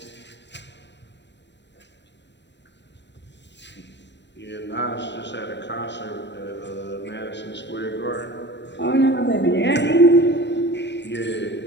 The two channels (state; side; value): late; right; 0.51 ms